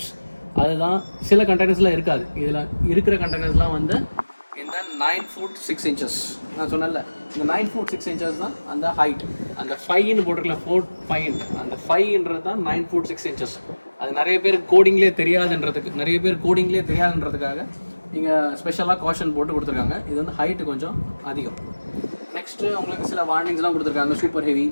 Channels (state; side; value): inverted; both; correlation -1.00